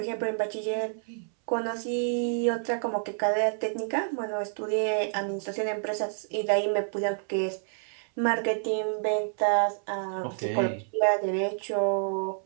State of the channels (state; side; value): silent; left; 59 dB below the other